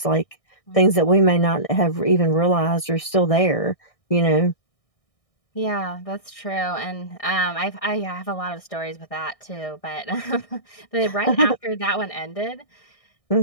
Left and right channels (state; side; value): late; right; 1.6 ms